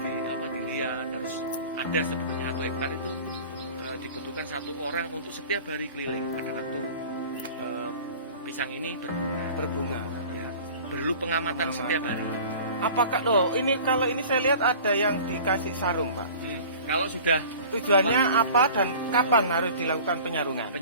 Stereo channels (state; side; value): inverted; both; correlation -0.43